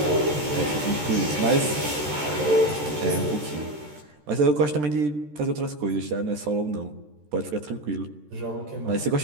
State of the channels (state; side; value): late; left; 13 ms